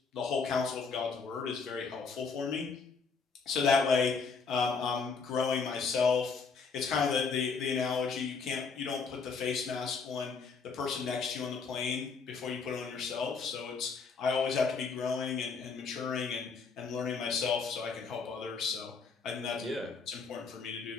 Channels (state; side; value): quieter; right; 5.1 dB